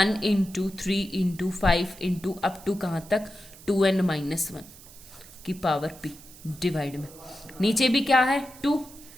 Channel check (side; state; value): right; noise; hiss, 20 dB below the sound